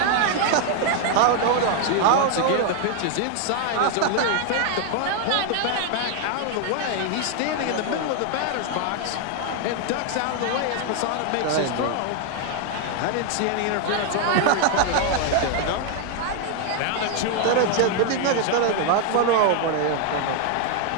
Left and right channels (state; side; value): different; both; correlation 0.00